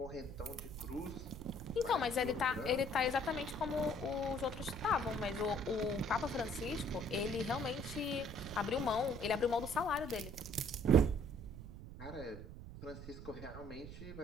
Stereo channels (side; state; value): right; noise; rumble, 11 dB below the sound